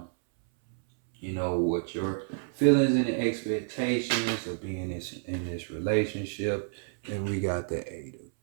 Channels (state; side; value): silent; left; 58 dB below the other